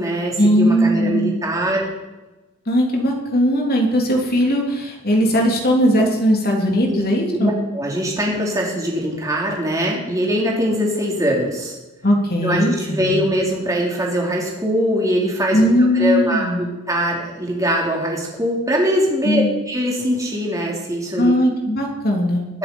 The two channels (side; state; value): both; normal; correlation 0.62